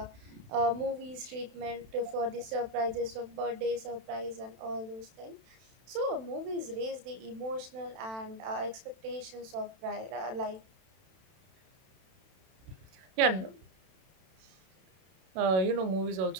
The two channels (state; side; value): late; left; 31 ms